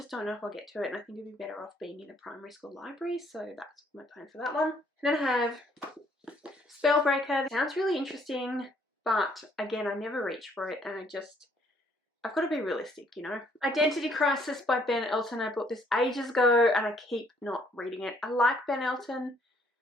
don't know if I'll get to it. And I think it would be better off being in a primary school library. So that's my plan for that one. And then I have Spellbreaker. It sounds really interesting. But again, I never reach for it. And I've got to be realistic, you know. Identity Crisis by Ben Elton. I bought this ages ago and I keep not reading it. I like Ben Elton,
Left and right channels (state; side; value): normal; both; correlation 0.65